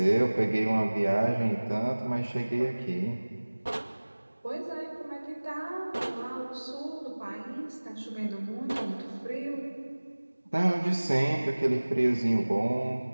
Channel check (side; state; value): both; inverted; correlation -1.00